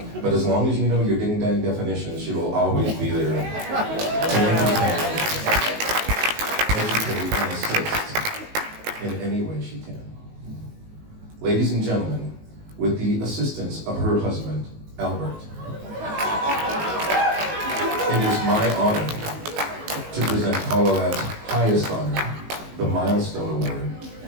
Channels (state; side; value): late; left; 19 ms